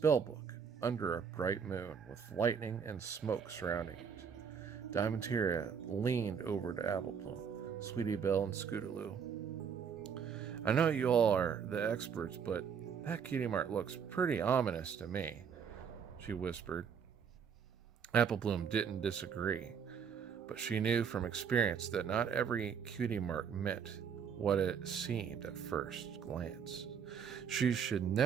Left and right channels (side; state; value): left; quieter; 7.0 dB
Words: book under a bright moon with lightning and smoke surrounding it. Diamantina leaned over to Apple Bloom, Sweetiebelle, and Scootaloo. I know you all are the experts, but that cutie mark looks pretty ominous to me, she whispered. Apple Bloom didn't disagree, but she knew from experience that not every cutie mark meant what it seemed at first glance. She should